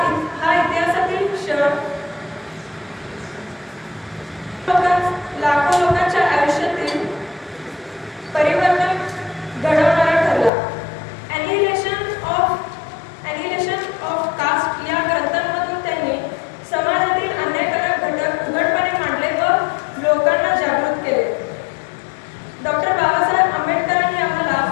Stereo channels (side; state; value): right; drops out; at 10.5 s